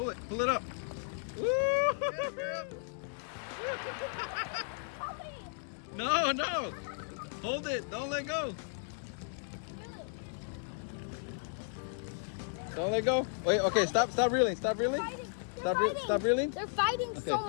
up. Woo! No. Hold it, don't let go. Don't let go. Wait, okay, stop reeling. Stop reeling. They're fighting so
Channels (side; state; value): right; silent; digital silence